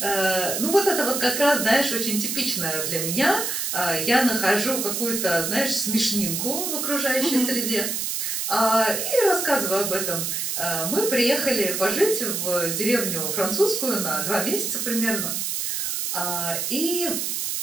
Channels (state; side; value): noise; right; hiss, 1 dB below the sound